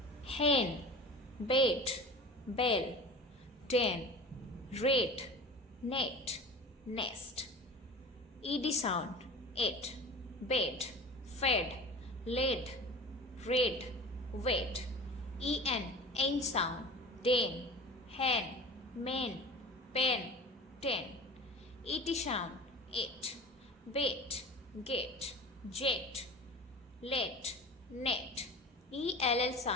hen, bait, bell, den, rate, net, nest. ED sound, it, bed, fed, led, red, wet. En sound, den, hen, men, pen, ten. Et sound, it, bait, get, jet, let, net. Ell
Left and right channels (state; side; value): normal; both; correlation 0.37